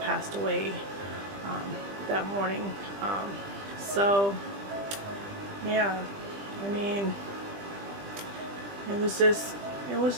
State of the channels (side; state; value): left; late; 20 ms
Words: away that morning. So yeah, I mean, it